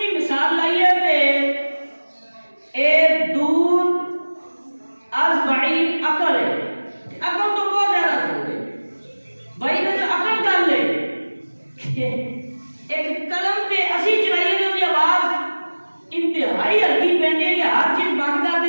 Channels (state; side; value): inverted; both; correlation -1.00